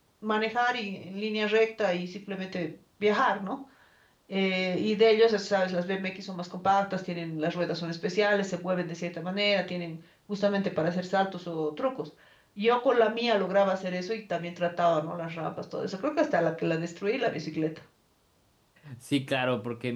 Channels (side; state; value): both; identical; correlation 1.00